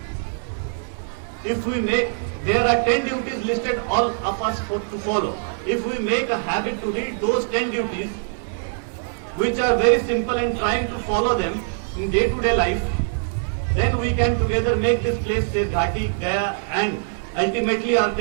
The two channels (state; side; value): silent; left; digital silence